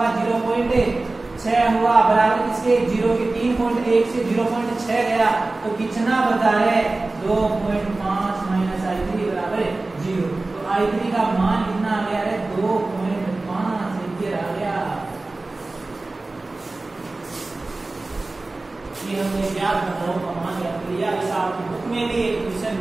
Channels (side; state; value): left; quieter; 3.2 dB